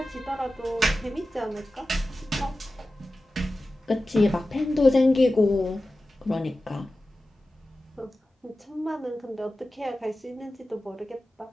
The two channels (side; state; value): both; normal; correlation 0.94